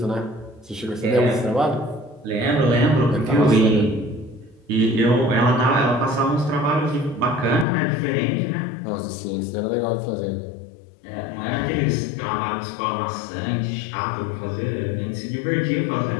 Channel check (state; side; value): drops out; right; at 7.7 s